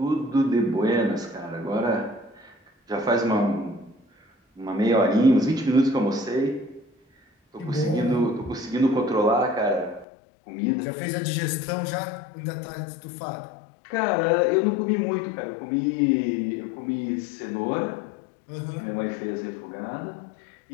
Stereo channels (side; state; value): right; drops out; at 10.1 s